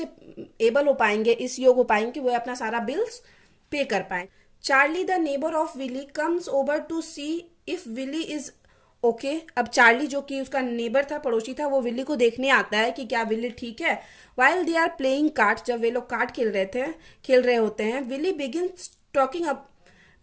एबल हो पाएंगे, इस योग हो पाएंगे कि वो अपना सारा बिल्स पे कर पाए। Charlie the neighbour of Willy comes over to see if Willy is okay. अब चार्ली जो कि उसका नेबर था, पड़ोसी था, वो विली को देखने आता है कि क्या विली ठीक है। While they are playing cards, जब वे लोग कार्ड खेल रहे होते हैं, Willy begins talking up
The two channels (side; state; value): both; identical; correlation 1.00